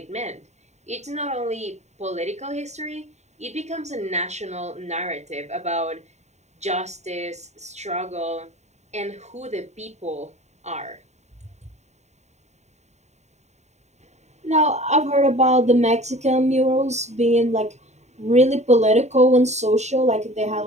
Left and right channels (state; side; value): late; left; 0.33 ms